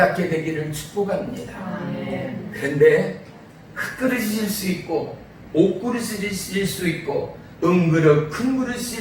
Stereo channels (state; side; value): identical; both; correlation 1.00